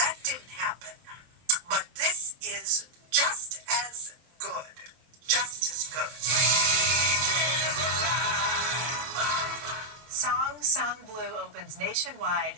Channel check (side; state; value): left; late; 24 ms